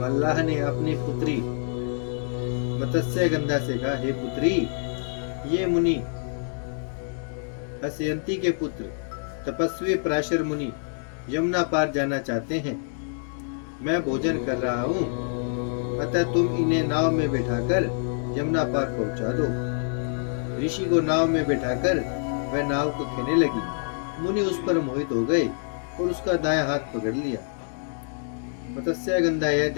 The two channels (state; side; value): silent; right; digital silence